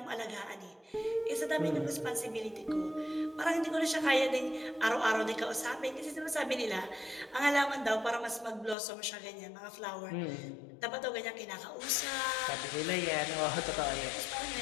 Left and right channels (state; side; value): drops out; right; at 8.8 s